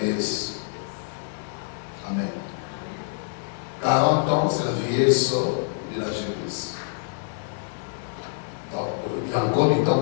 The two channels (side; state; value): right; silent; 61 dB below the other